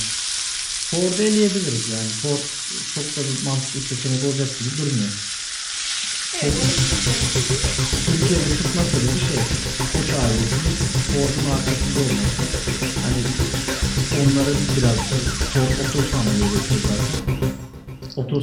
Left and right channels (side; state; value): both; identical; correlation 1.00